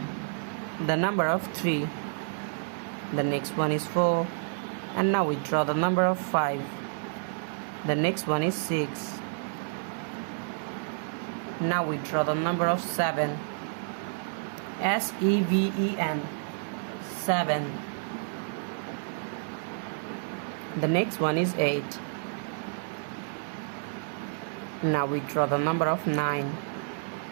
The number of 3. The next one is 4. And now we draw the number of 5. The next one is 6. Now we draw the number of 7. S-E-V-E-N. 7. The next one is 8. Now we draw the number of 9.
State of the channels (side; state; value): left; silent; digital silence